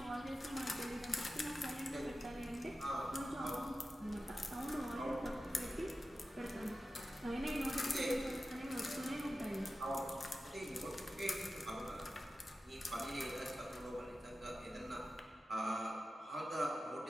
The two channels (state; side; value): normal; both; correlation 0.93